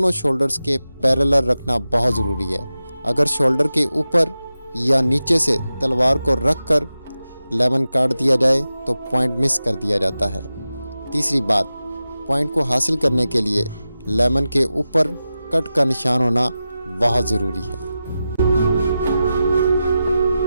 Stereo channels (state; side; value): inverted; both; correlation -0.93